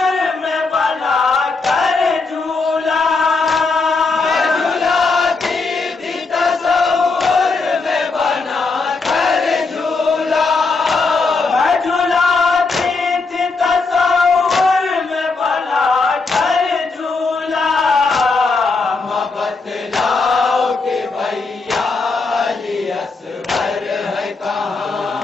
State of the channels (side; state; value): right; quieter; 4.0 dB